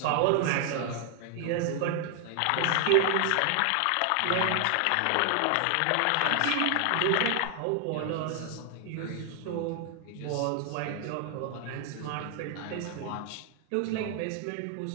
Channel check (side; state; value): both; different; correlation 0.00